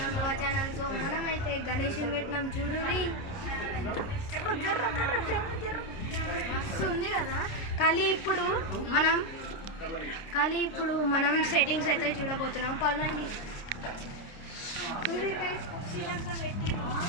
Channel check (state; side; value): late; right; 29 ms